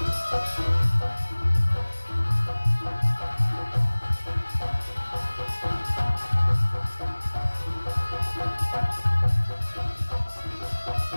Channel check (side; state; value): both; inverted; correlation -1.00